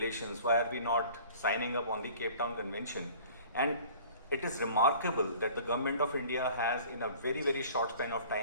why are we not signing up on the Cape Town Convention? And it is remarkable that the government of India has, in a very, very short span of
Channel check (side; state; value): both; inverted; correlation -0.48